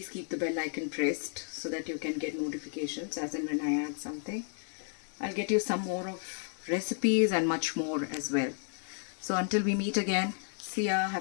keep the bell icon pressed so that you can get notifications as and when I add something. I'll get you some more of recipes and much more as well. So until we meet again, see ya,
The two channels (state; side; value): silent; right; 56 dB below the other